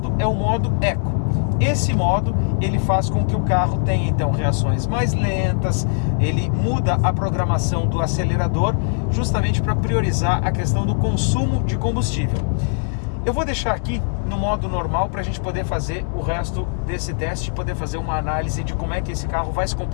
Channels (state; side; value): silent; right; digital silence